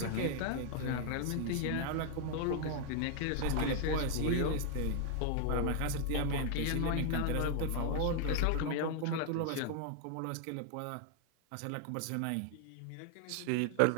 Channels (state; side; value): different; both; correlation 0.00